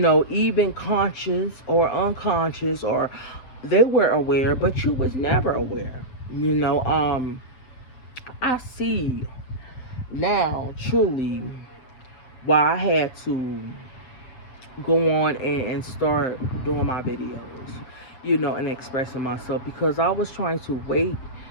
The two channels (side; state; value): right; late; 7.7 ms